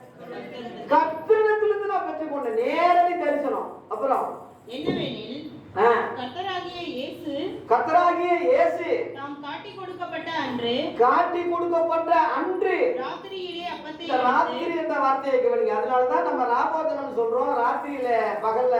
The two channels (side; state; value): both; identical; correlation 1.00